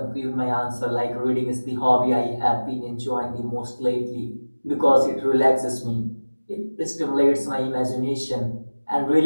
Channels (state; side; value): inverted; both; correlation -1.00